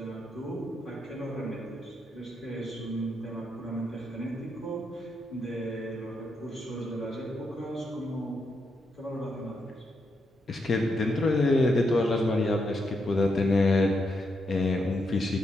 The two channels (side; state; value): both; normal; correlation 0.81